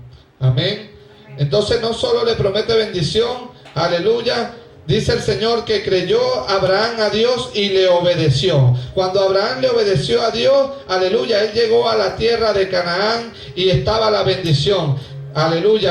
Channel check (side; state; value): both; identical; correlation 1.00